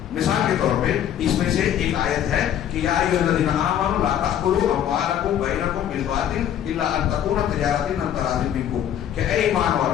مثال کے طور پہ اس میں سے ایک آیت ہے کہ یا ایھا الذین آمنوا لا تأکلوا اموالکم بینکم بالباطل الا ان تکون تجارۃ عن تراض منکم, کہ اے ایمان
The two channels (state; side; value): quieter; right; 10.3 dB